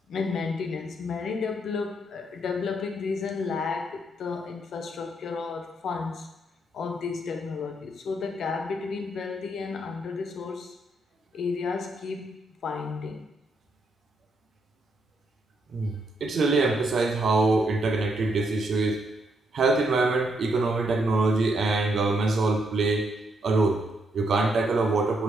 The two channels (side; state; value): both; normal; correlation 0.77